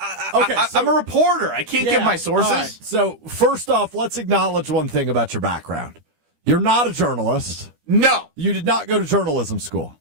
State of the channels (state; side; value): late; left; 22 ms